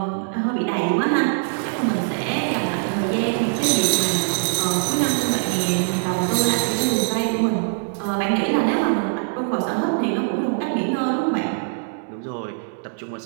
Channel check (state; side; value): silent; left; 64 dB below the other